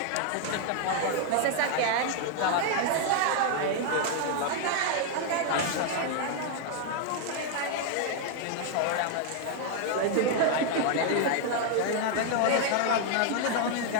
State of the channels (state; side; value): different; both; correlation 0.00